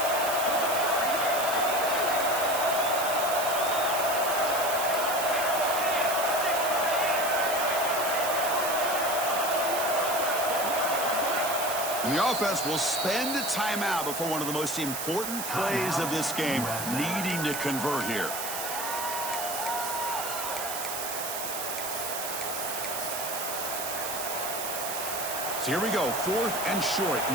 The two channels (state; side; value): noise; right; hiss, 5 dB below the sound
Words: And the offense will spend a timeout before one of the most important plays of this game, needing to convert here. So here we go, 4th and short.